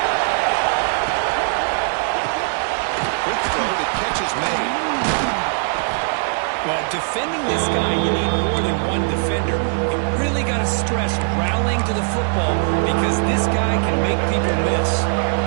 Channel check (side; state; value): left; silent; 61 dB below the other